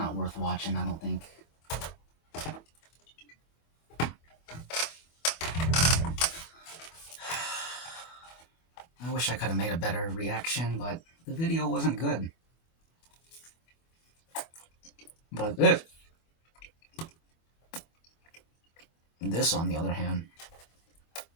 worth watching, I don't think. I wish I could have made a better reaction, but the video wasn't good. But this on the other hand,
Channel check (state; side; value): late; right; 24 ms